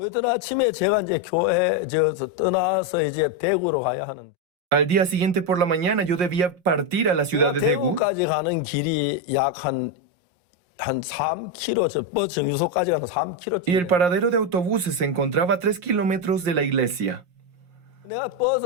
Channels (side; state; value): left; late; 5.6 ms